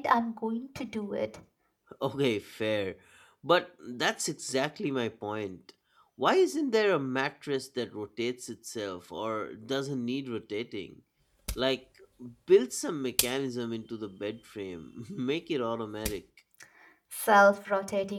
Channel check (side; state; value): both; identical; correlation 1.00